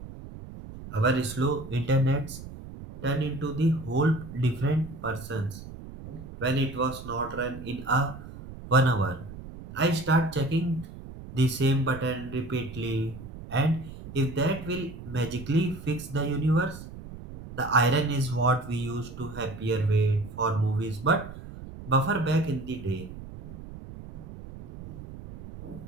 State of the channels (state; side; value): noise; right; rumble, 13 dB below the sound